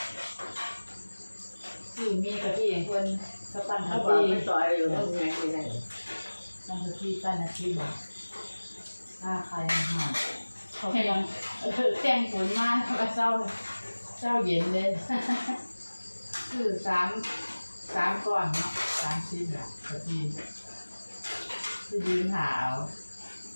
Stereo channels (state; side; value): inverted; both; correlation -1.00